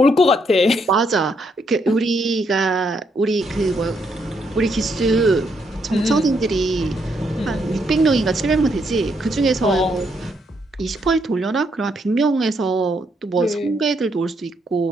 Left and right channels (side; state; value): both; normal; correlation 0.75